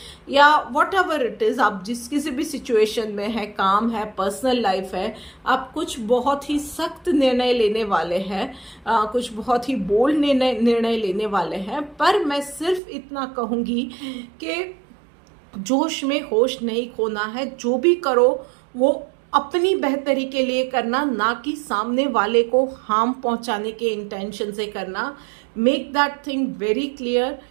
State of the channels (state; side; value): drops out; left; at 12.8 s